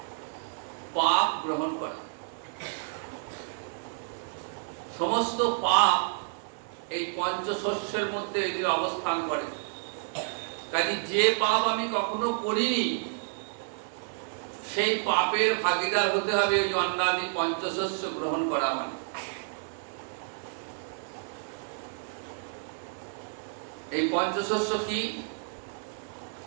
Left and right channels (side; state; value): left; silent; digital silence